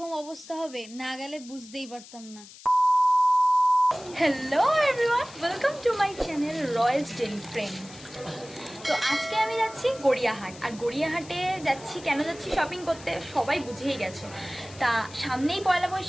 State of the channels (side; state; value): left; noise; hiss, 19 dB below the sound